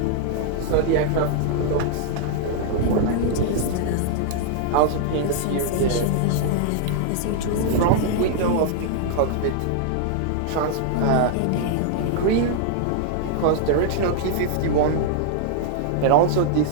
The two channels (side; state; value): both; different; correlation -0.01